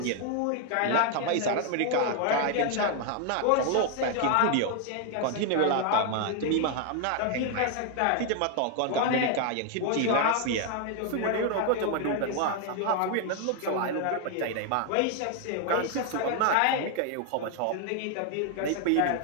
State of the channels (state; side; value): different; both; correlation 0.00